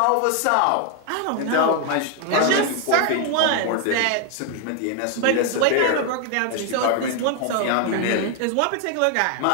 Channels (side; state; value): both; different; correlation 0.00